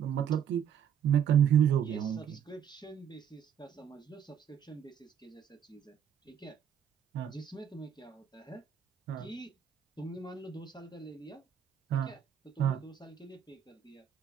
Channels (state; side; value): quieter; left; 8.8 dB